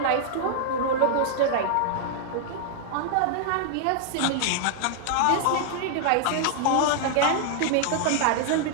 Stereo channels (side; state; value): both; different; correlation -0.01